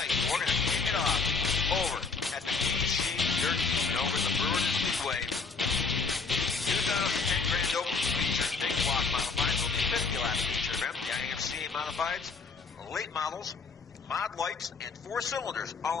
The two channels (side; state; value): right; quieter; 4.6 dB